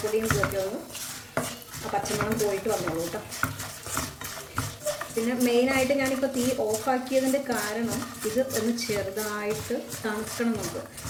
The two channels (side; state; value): both; identical; correlation 1.00